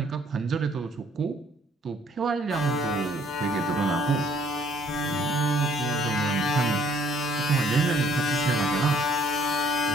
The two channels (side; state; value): both; normal; correlation 0.61